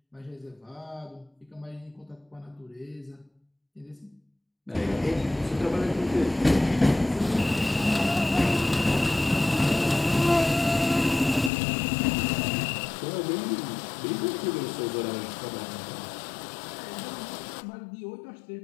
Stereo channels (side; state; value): right; drops out; at 11.5 s